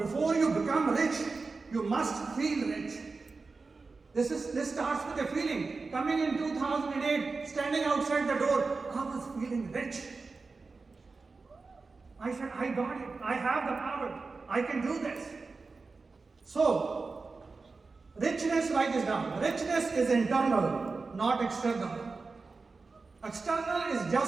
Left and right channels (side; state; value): left; quieter; 4.1 dB